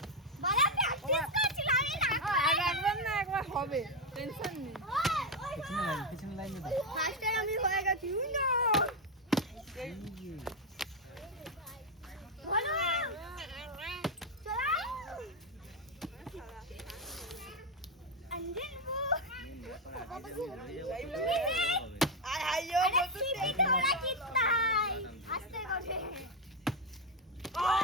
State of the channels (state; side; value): normal; both; correlation 0.04